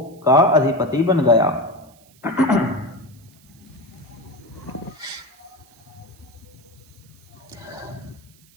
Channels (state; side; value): noise; right; hiss, 29 dB below the sound